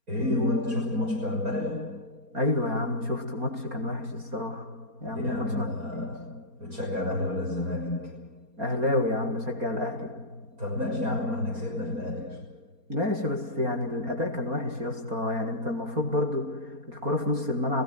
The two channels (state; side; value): late; left; 4.3 ms